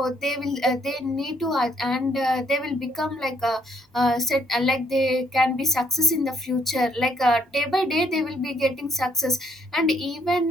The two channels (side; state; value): both; normal; correlation 0.67